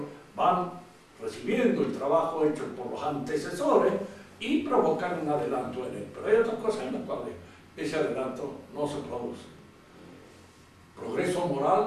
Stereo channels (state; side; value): identical; both; correlation 1.00